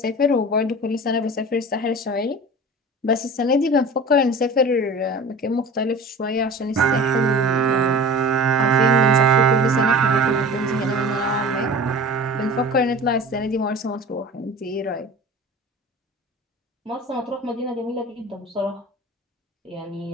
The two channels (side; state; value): both; normal; correlation 0.38